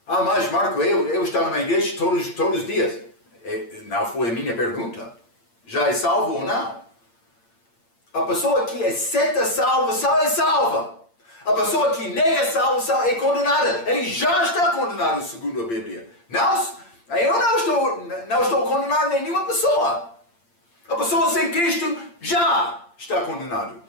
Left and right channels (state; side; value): late; right; 8.7 ms